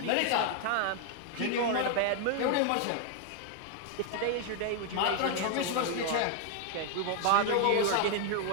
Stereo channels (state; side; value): different; both; correlation 0.00